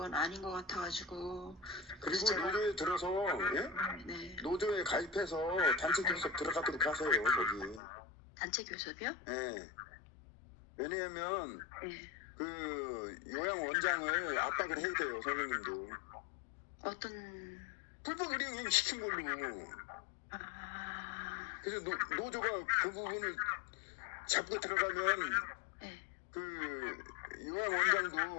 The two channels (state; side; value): drops out; right; at 7.8 s